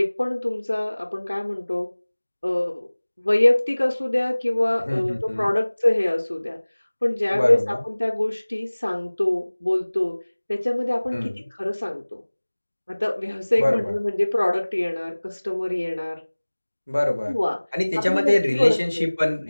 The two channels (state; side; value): inverted; both; correlation -1.00